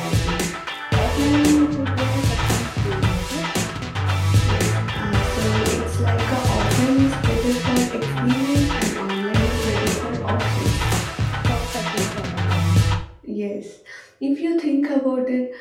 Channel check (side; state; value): both; identical; correlation 1.00